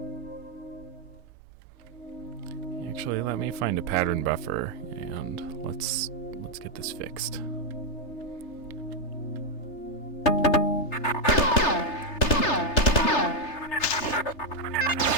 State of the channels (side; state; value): right; late; 3.3 ms